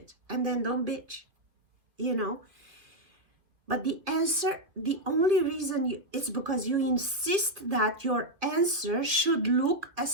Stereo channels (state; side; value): late; left; 2.4 ms